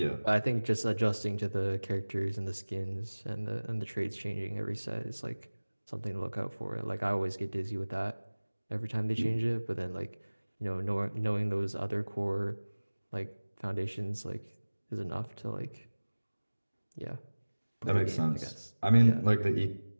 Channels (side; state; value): both; inverted; correlation -1.00